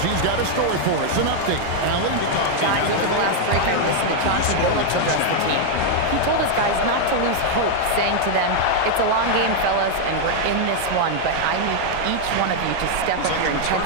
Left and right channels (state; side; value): different; both; correlation 0.00